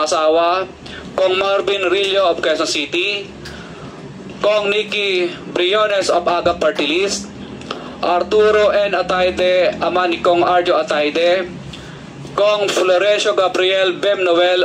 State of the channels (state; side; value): identical; both; correlation 1.00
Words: asawa, Kong Marvin Rillo of Quezon City, Kong Nikki Briones of Aga Party List, Arturo N. Ataide, ama ni Kong Arjo Ataide, Kong Florencio Gabriel Bem Noel